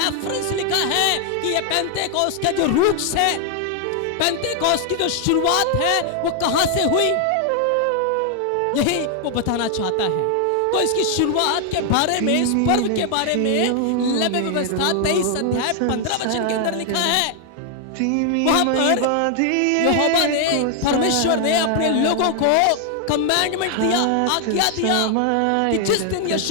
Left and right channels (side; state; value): both; different; correlation 0.00